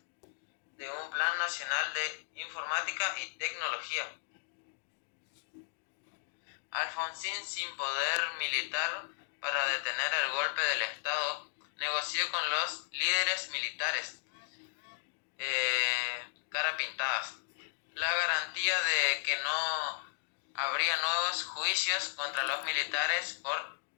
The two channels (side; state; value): right; silent; digital silence